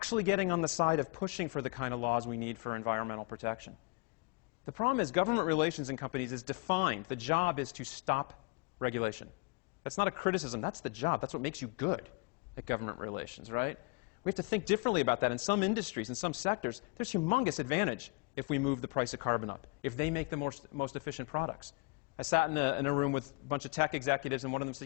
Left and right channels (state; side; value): quieter; right; 29.8 dB